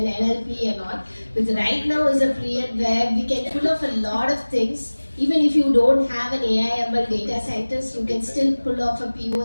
NLP and all. But right now is a period where we can pull off a lot of things. Even if you don't have an AI/ML data scientist, you can still pull off a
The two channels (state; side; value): inverted; both; correlation -1.00